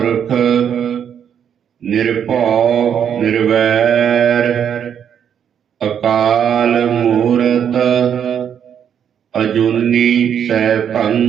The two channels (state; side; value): quieter; left; 8.5 dB